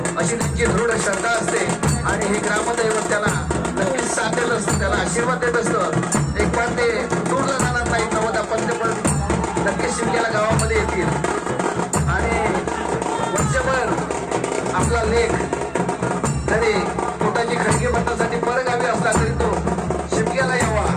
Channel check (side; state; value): both; identical; correlation 1.00